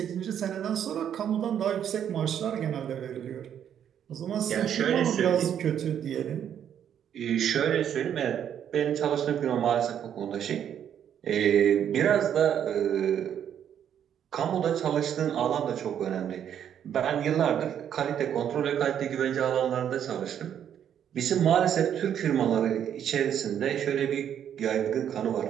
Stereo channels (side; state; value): left; quieter; 9.3 dB